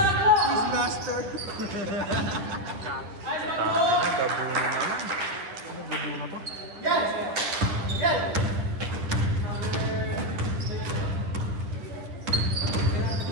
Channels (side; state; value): left; late; 10 ms